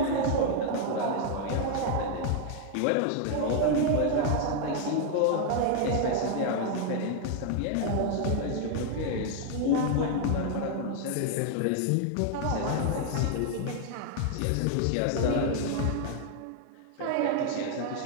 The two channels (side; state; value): both; different; correlation 0.00